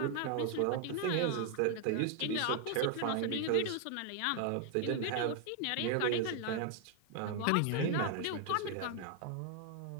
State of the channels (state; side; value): different; both; correlation 0.00